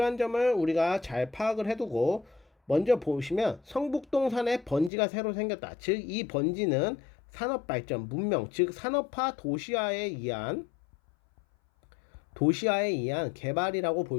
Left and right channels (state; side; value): drops out; right; at 4.9 s